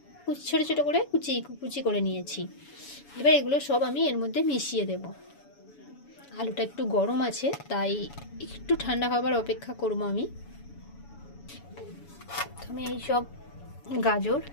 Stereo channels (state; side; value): late; right; 7.1 ms